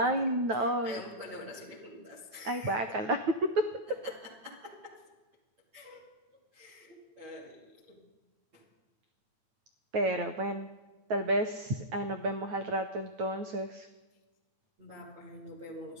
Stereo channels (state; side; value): late; left; 9.2 ms